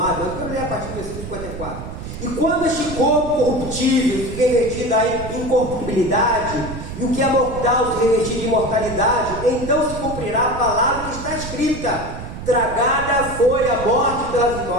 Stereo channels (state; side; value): noise; right; rumble, 9 dB below the sound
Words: Eu quero ler a partir do versículo 54. E quando este corpo corruptível se revestir em incorruptibilidade, e o que é mortal se revestir de imortalidade, então se cumprirá a palavra que está escrita: tragada foi a morte pela